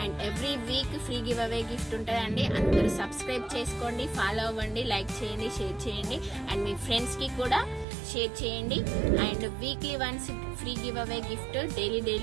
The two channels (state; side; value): drops out; left; at 7.9 s